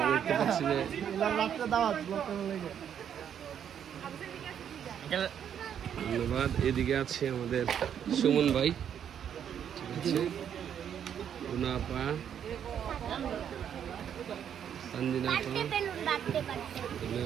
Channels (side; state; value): left; quieter; 8.9 dB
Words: দেখতে পাচ্ছি যে ধন্যবাদ। এদিকে আছে আমাদের সুমন ভাই, ঠিক আছে উনাপা, তানজিনা আপা,